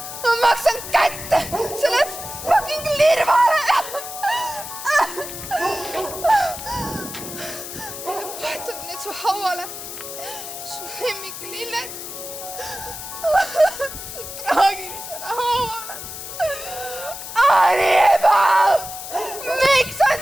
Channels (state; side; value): noise; left; hiss, 10 dB below the sound